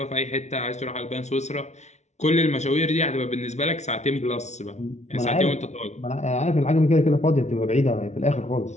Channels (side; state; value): right; late; 0.32 ms